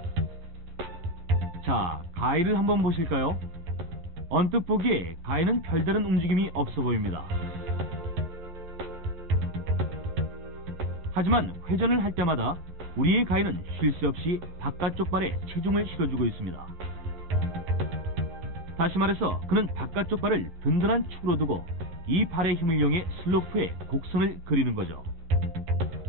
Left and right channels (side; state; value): left; late; 12 ms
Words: 자, 가이를 한번 보실까요? 언뜻 보기에 가이는 별다른 움직임이 없어 보입니다. 하지만 회전을 할 때마다 우리의 가이는 쉴 새 없이 바깥쪽 발에 체중을 실어주고 있습니다. 다시 말해서 그는 바깥쪽 발을 든든한 축으로 두고 이 발의 힘을 이용해 슬로프에 곡선을 그리는 거죠.